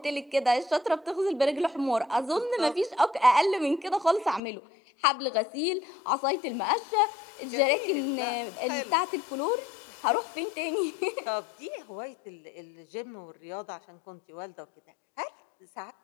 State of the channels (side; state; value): right; drops out; at 4.4 s